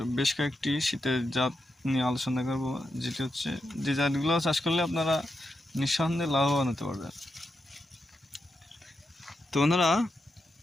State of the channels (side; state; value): both; normal; correlation 0.87